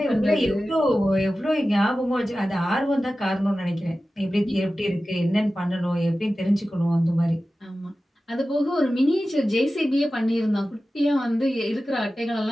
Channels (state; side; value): normal; both; correlation 0.95